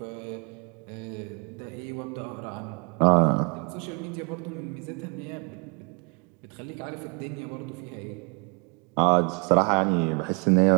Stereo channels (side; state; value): left; quieter; 34.4 dB